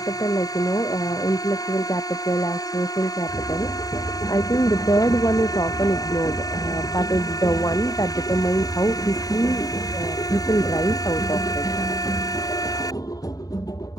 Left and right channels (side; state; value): right; late; 0.18 ms